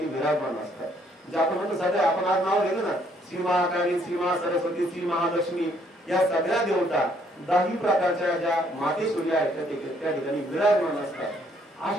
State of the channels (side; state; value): both; normal; correlation 0.67